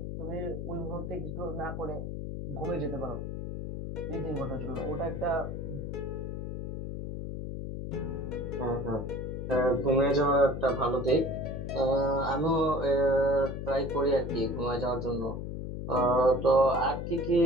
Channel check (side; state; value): left; noise; hum, 5 dB below the sound